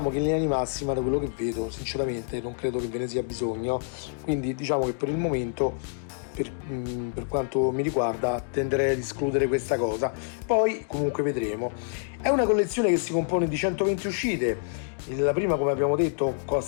che in linea di massima, da quello che vedo, sinceramente non credo che ve ne sia bisogno, quindi diciamo che per il momento per quanto mi riguarda tenderei ad escludere questa cosa, poi comunque vedremo. È una collezione che si compone di 120 uscite. La prima, come abbiamo detto,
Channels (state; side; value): silent; right; digital silence